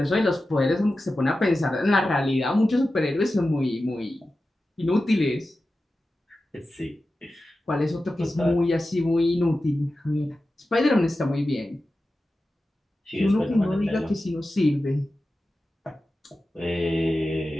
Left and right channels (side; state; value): both; normal; correlation 0.93